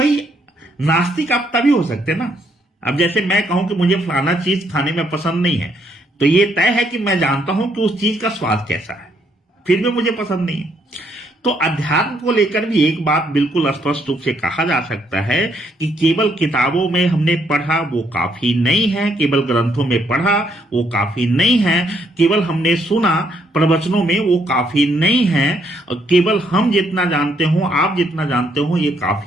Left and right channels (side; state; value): both; normal; correlation 0.72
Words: नास्तिक आप तभी हो सकते ना, अब जैसे मैं कहूं कि मुझे फलाना चीज खाने में पसंद नहीं है, तो ये तय है कि मैं जानता हूं कि उस चीज का स्वाद कैसा है, फिर भी मुझे पसंद नहीं है। तो अध्यात्म को लेकर भी एक बात बिल्कुल स्पष्ट रूप से कहा जा सकता है कि केवल किताबों में हमने पढ़ा वो काफी नहीं है, केवल ग्रंथों में पढ़ा वो काफी नहीं है, केवल हमने सुना प्रवचनों में वो काफी नहीं है, केवल हम जितना जानते हो, आप जितना जानते हो, ये